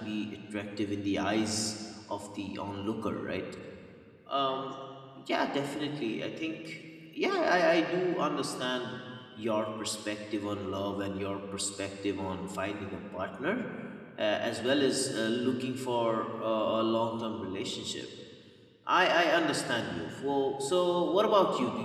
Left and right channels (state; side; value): identical; both; correlation 1.00